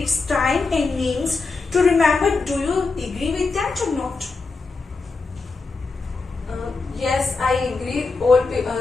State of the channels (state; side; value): quieter; right; 4.1 dB